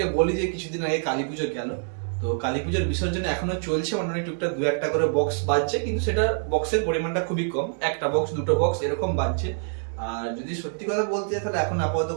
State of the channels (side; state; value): left; silent; digital silence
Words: বলি যে কিছুদিন আগে কালী পুজো গেল, তো কালী পুজোর বিসর্জন এখনো চলছে, মানে টুকটাক দু একটা করে বক্স বাজছে, কিন্তু সেটা বক্সের পরিমাণটা খুবই কম, একটা বক্স দুটো বক্স এরকম বাজছে। আর যদি সত্যি কথা বলতে চাই তাহলে এখন আপাতত